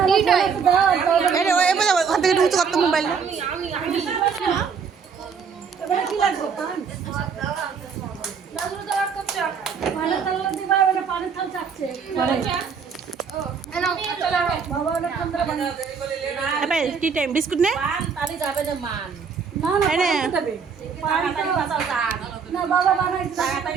ওখান থেকে ঢুকতে করতো মোবাইল টি টাইম বিস্কুট নে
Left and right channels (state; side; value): quieter; left; 6.1 dB